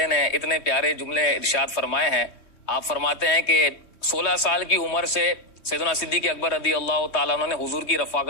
نے اتنے پیارے جملے ارشاد فرمائے ہیں. آپ فرماتے ہیں کہ 16 سال کی عمر سے سیدنا صدیق اکبر رضی اللہ تعالیٰ عنہ نے حضور کی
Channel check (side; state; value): right; late; 3.2 ms